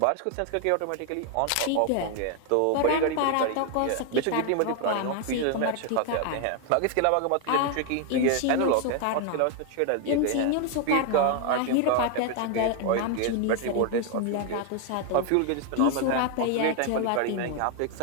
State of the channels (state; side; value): different; both; correlation 0.00